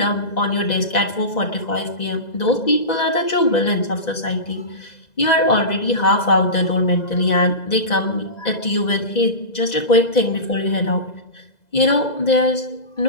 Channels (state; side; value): late; right; 2.0 ms